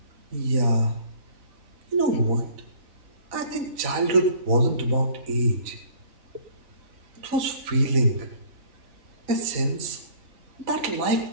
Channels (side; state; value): left; late; 3.9 ms